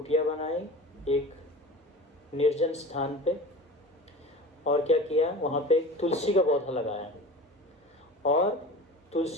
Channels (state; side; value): normal; both; correlation 0.36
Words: बनाई एक निर्जन स्थान पे, और क्या किया, वहाँ पे एक तुलसी का पौधा लगाया, और